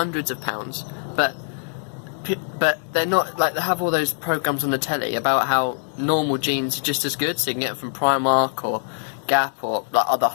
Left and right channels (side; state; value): right; silent; 63 dB below the other